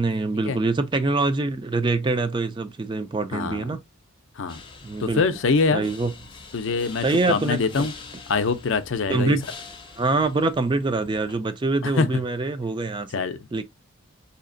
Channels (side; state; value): both; normal; correlation 0.39